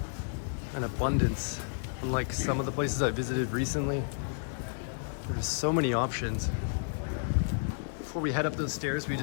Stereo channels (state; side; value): silent; right; digital silence